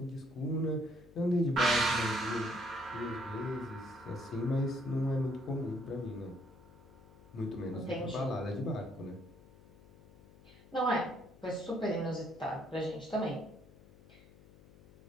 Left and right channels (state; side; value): noise; left; hum, 22 dB below the sound